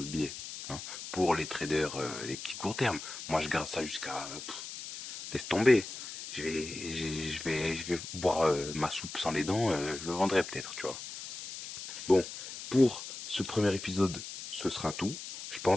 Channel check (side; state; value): left; noise; hiss, 10 dB below the sound